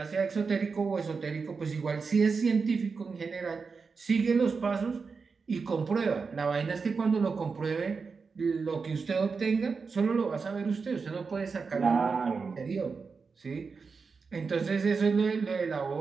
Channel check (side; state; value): left; quieter; 5.0 dB